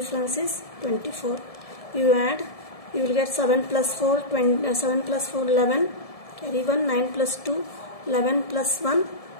is 24. You add, you will get 7 plus 4, 7 plus 4, 11. Carry 1, 9 plus 2, 11 plus 1,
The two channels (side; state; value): right; late; 1.7 ms